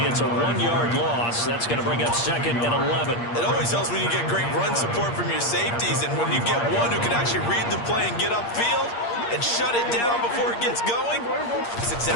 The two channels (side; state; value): right; late; 8.5 ms